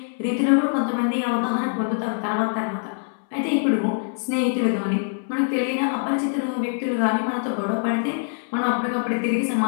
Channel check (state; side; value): silent; right; 63 dB below the other